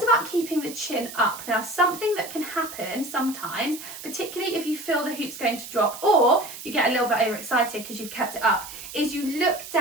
about keeping the chin up. Now, something that can happen sometimes, particularly if you feel the hoop's going to drop or you get a little bit overexcited because you've kept it up, is you look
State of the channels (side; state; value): right; noise; hiss, 12 dB below the sound